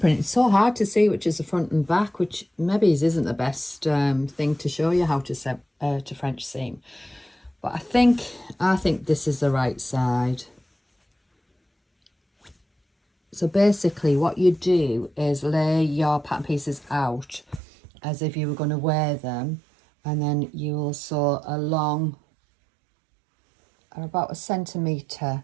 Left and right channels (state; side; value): drops out; left; at 17.6 s